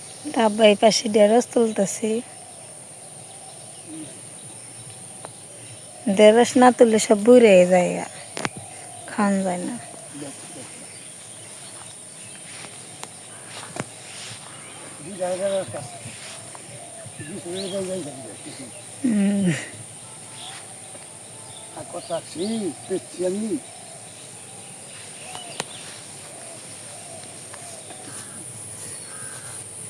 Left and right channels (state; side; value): identical; both; correlation 1.00